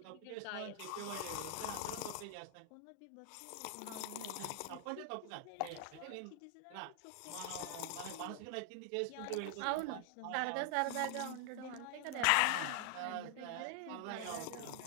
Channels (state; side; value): different; both; correlation 0.00